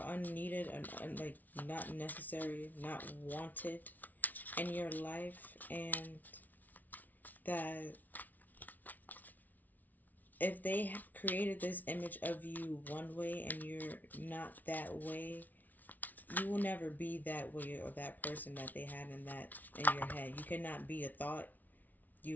unneeded and like not necessary, not wanted in your life, and that if they created this image of you one way and you're not that way, you will never be that way or that person that they had in your head. You cannot be a thought.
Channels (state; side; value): late; right; 0.079 ms